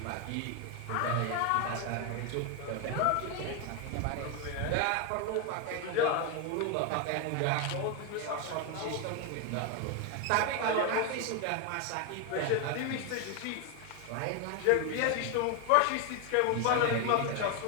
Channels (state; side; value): different; both; correlation 0.01